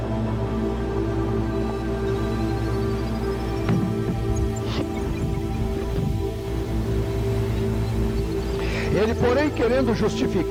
Ele, porém, querendo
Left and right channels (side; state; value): both; identical; correlation 1.00